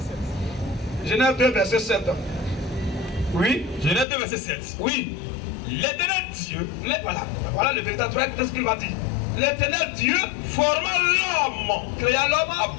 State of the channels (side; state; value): right; drops out; at 4.0 s